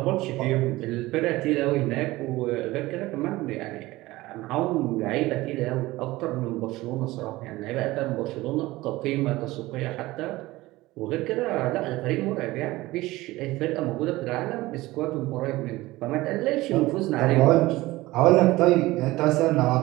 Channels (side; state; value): left; quieter; 18.9 dB